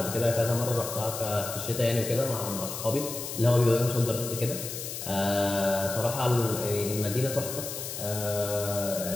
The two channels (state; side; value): noise; left; hiss, 7 dB below the sound